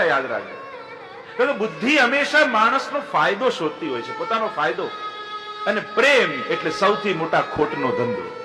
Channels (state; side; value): identical; both; correlation 1.00